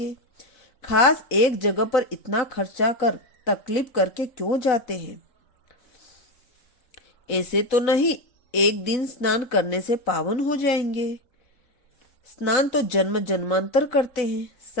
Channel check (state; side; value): late; right; 3.7 ms